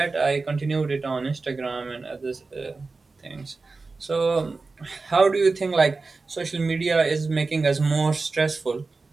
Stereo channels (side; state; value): left; quieter; 3.9 dB